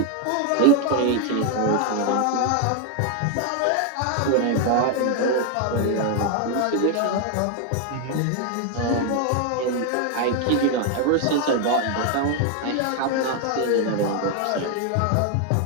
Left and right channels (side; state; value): both; different; correlation 0.00